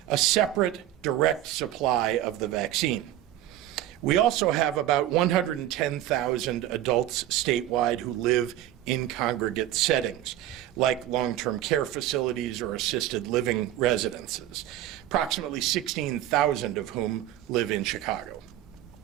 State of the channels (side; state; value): left; quieter; 13.0 dB